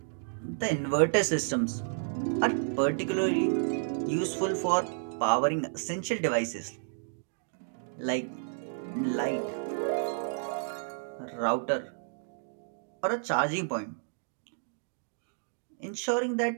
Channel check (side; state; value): left; silent; digital silence